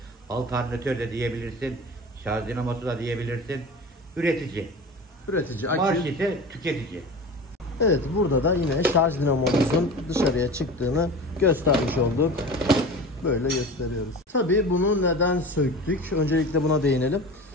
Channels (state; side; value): normal; both; correlation 0.34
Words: alternatör de diyebilirsin. Şarj dinamosu da diyebilirsin. Üretici. Üretici. Marş ise tüketici. Evet, burada da yine şarj dinamomuzun dışarıya çıktığını göstermiş olduk. Böyle gösteriyoruz. Tabii bunu neden söktük? Öncelikle buna değinelim.